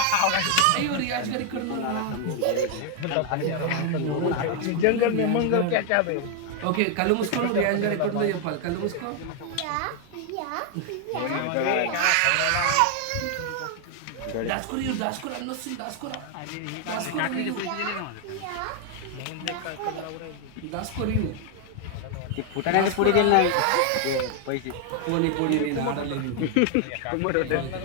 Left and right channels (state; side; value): different; both; correlation 0.00